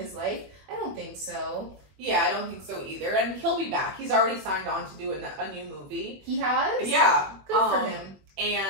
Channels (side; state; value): left; late; 21 ms